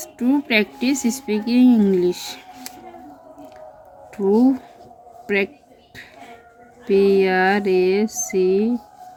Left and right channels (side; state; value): both; identical; correlation 1.00